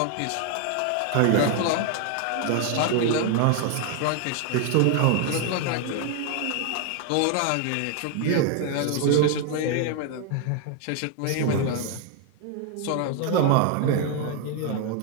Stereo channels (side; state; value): both; different; correlation 0.00